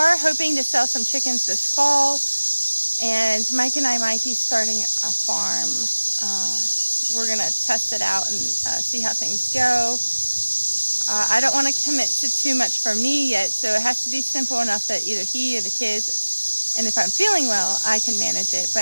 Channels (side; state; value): both; inverted; correlation -1.00